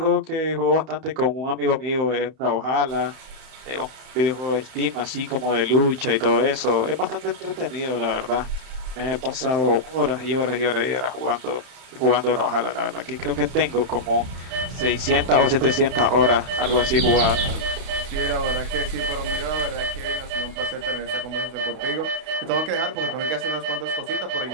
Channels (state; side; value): late; left; 31 ms